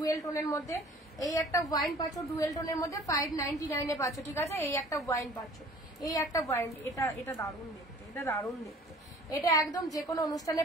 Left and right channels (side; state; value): both; normal; correlation 0.50